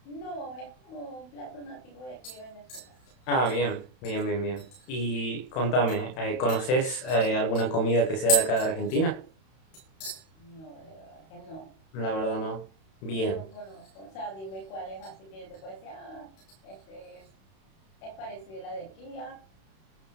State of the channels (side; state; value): right; late; 31 ms